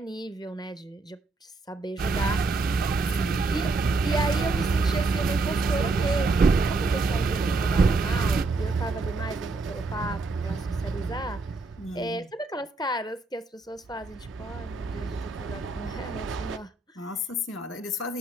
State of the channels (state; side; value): quieter; left; 3.5 dB